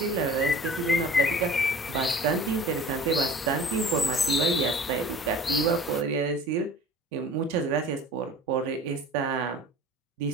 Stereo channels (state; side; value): normal; both; correlation 0.43